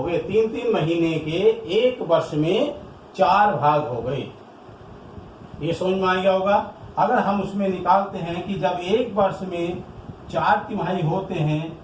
गए। 3 महीने के एक वर्ष में 4 भाग हो गए। ये समझ में आ गया होगा। अगर हम उसमें निकालते हैं कि जब एक वर्ष में 4 तिमाही होते हैं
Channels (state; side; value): identical; both; correlation 1.00